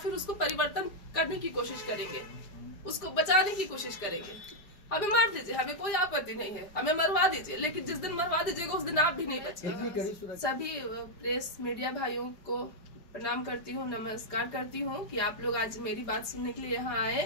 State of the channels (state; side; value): late; right; 5.1 ms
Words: उसको परिवर्तन करने की कोशिश करेंगे, उसको बचाने की कोशिश करेंगे? हमें मार दीजिए, हमें कोई आपत्ति नहीं है, हमें मरवा दीजिए, लेकिन जिस दिन मरवा दीजिएगा उस दिन आप भी नहीं बचेंगे। सभी प्रेस मीडिया भाइयों को प्रणाम करती हूँ, नमस्कार करती हूँ कि आप लोग आज मेरी बात सुनने के लिए यहाँ